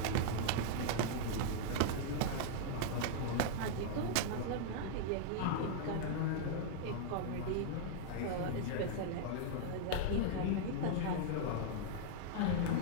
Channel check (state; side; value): different; both; correlation -0.01